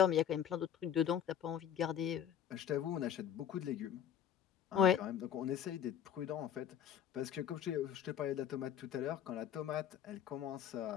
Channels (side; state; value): right; quieter; 9.3 dB